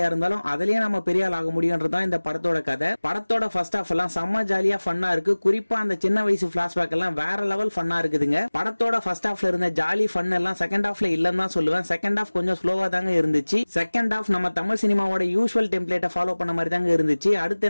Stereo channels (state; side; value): inverted; both; correlation -1.00